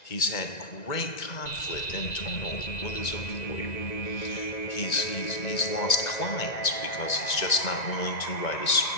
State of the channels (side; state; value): right; late; 1.9 ms